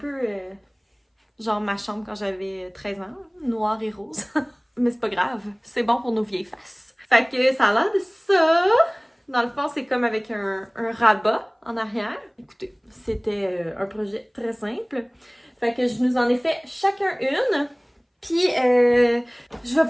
genre ma chambre quand j'avais 13 ans, noir et rose. Mais c'est pas grave, c'est bon pour nos vieilles faces. Fait que ça a l'air de ça. Dans le fond, c'est comme avec un rabat en arrière. Écoutez, c'était un projet très simple. Fait que je nous en ai fait chacun une. Puis, je vais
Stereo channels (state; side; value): identical; both; correlation 1.00